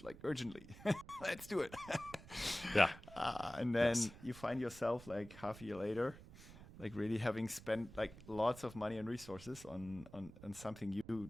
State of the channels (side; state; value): right; noise; rumble, 17 dB below the sound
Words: urgently. Let's do it. Yeah. And then you find yourself half a year later, really having spent lots of money and resources on something you